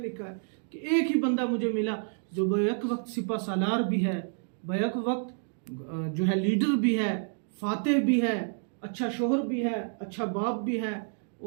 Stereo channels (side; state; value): left; silent; digital silence